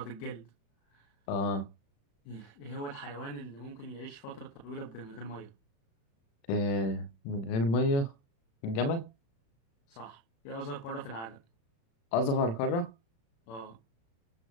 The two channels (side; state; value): right; late; 35 ms